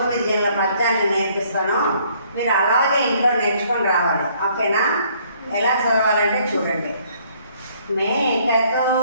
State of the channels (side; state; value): both; inverted; correlation -0.63